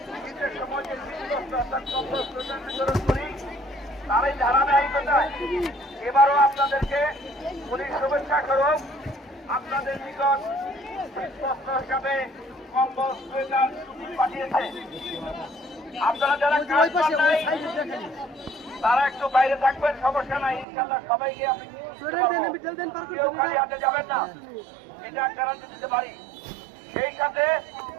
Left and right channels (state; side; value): drops out; left; at 20.7 s